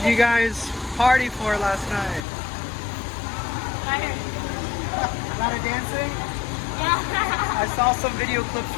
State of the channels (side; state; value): right; drops out; at 2.2 s